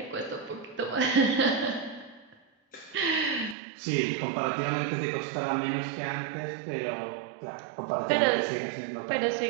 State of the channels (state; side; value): drops out; left; at 3.6 s